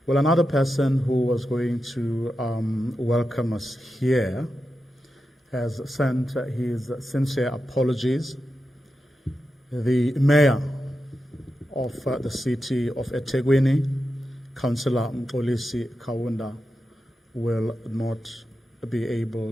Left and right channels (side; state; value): both; normal; correlation 0.90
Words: Well, another person who was going to welcome us here has sent his sincere apologies. The mayor of the city of eThekwini, Councillor Mxolisi Kaunda, will not be able